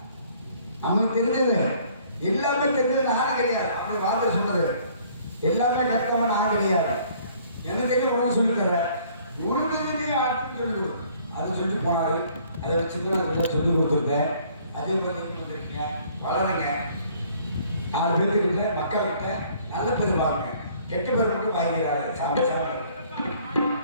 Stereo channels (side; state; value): both; inverted; correlation -0.58